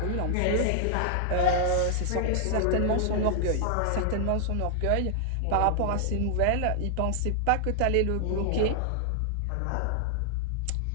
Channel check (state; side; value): different; both; correlation -0.01